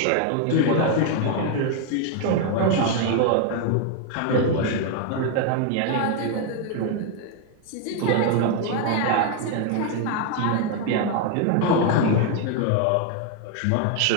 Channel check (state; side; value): different; both; correlation 0.01